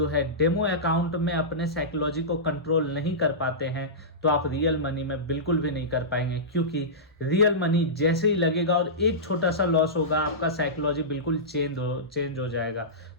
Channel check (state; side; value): normal; both; correlation -0.17